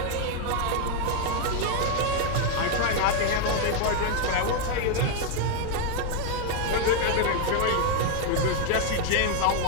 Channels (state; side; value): different; both; correlation 0.00